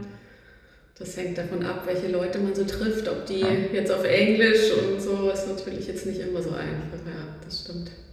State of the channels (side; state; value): both; identical; correlation 1.00